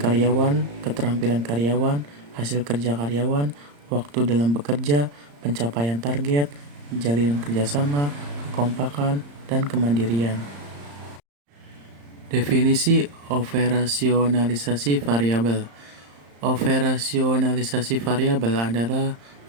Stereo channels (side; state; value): left; late; 35 ms